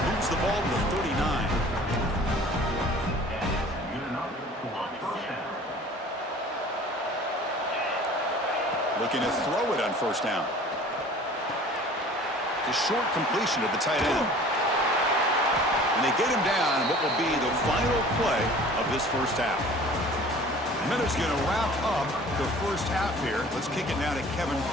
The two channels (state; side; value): normal; both; correlation 0.46